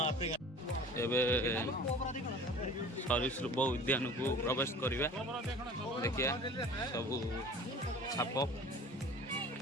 ଏବେ ସରୀସୃପ ଉଦ୍ୟାନକୁ ପ୍ରବେଶ କରିବା। ଦେଖିବା ସବୁ ସାପ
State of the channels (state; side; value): normal; both; correlation 0.43